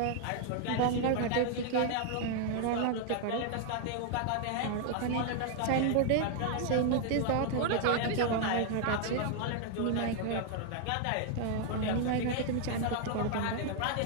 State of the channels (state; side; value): different; both; correlation 0.00